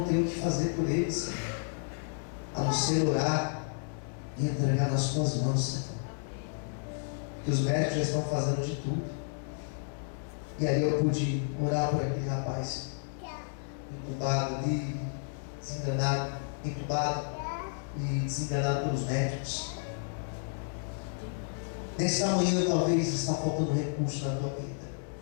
tenho o que fazer por ele, Senhor, a não ser orar e entregar nas tuas mãos, Senhor. Porque os médicos já estão fazendo de tudo. E aí eu pude orar por aquele rapaz, entubado ali, desenganado, entubado e desenganado pelos médicos. Nesta manhã talvez está faltando recurso na tua vida.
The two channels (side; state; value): right; silent; digital silence